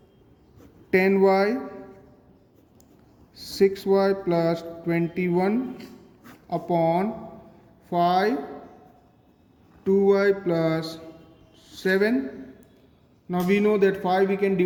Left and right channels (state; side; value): identical; both; correlation 1.00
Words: 10y 6y plus 21 upon 5 2y plus 7. Now we know that 5 we can